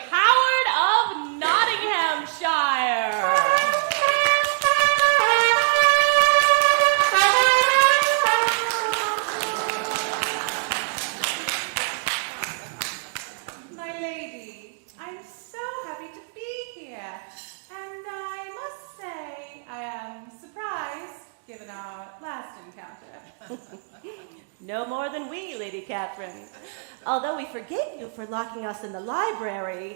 of Nottinghamshire. My lady, I'm so happy to be here. And I must say, I am surprised, given our last encounter. No more than we, Lady Catherine. Although we forgave you for locking us in the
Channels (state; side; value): silent; left; 62 dB below the other